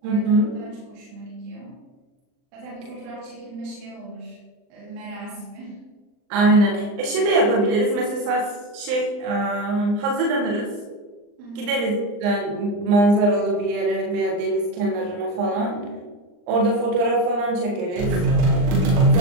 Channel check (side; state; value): left; late; 39 ms